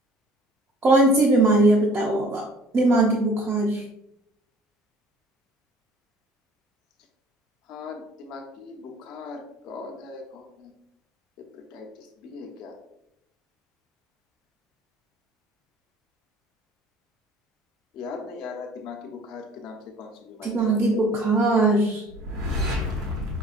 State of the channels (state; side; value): normal; both; correlation 0.52